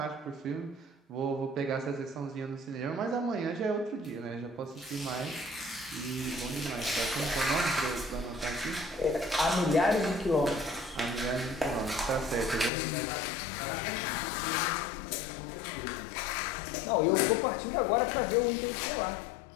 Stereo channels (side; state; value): right; drops out; at 12.7 s